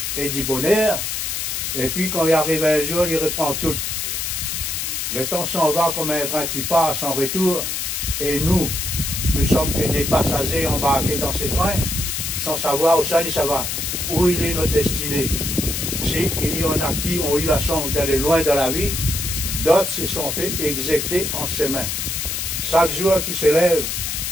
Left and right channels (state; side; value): noise; left; hiss, 2 dB below the sound